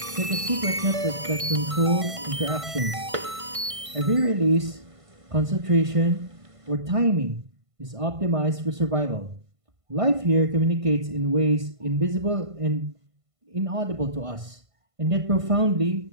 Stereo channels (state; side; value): late; left; 1.5 ms